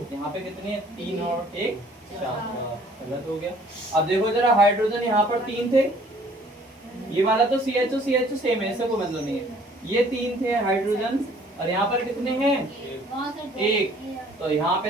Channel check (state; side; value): normal; both; correlation 0.56